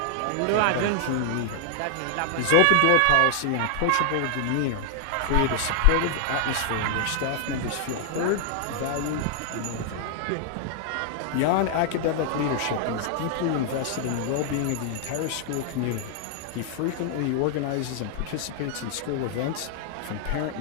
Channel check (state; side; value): different; both; correlation 0.00